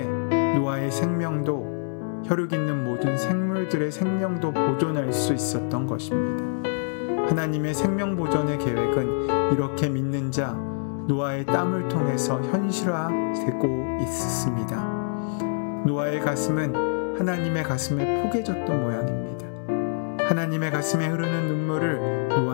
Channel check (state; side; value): silent; right; 61 dB below the other